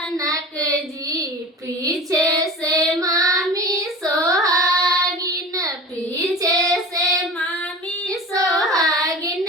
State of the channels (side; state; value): both; normal; correlation 0.35